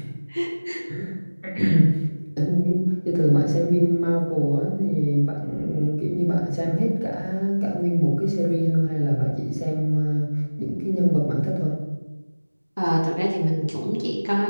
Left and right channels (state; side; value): inverted; both; correlation -1.00